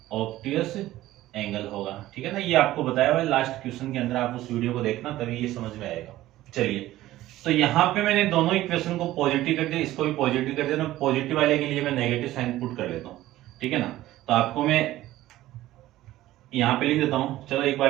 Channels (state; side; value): quieter; left; 15.4 dB